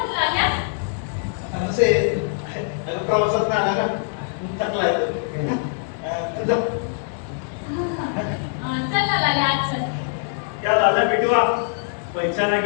प्रवासात आला ना थकलाय क्या लाला बिटवा पहचाना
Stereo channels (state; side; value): silent; right; 64 dB below the other